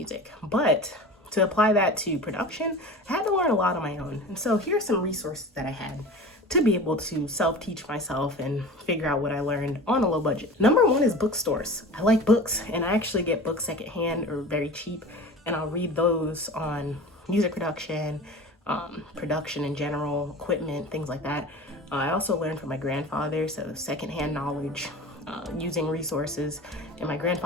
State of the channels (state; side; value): normal; both; correlation 0.36